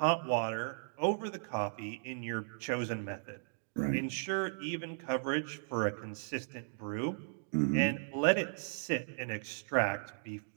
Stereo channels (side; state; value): left; silent; digital silence